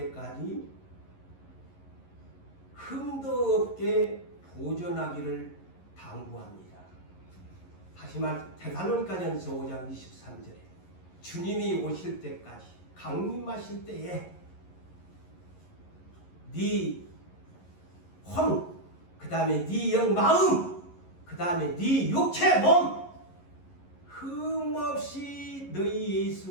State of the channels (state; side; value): late; right; 11 ms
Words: 흠도 없게 보존하기를 당부합니다. 다시 말 데살로니가전서 5장 23절에 주님이 오실 때까지 강림하실 때에 네 혼, 그 다음에 네 영 마음, 그 다음에 네 육체 몸 흠없이 너희